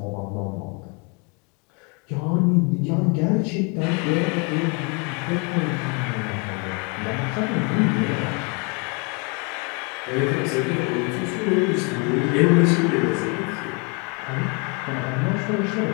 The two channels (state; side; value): quieter; right; 33.3 dB